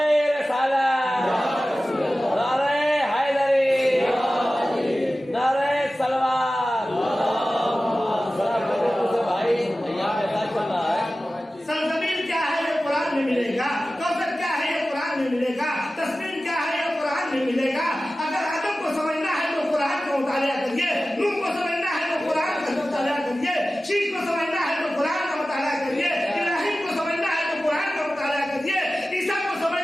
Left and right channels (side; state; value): both; normal; correlation 0.95